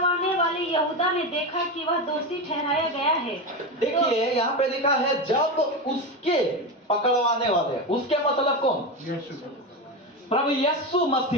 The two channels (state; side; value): normal; both; correlation 0.17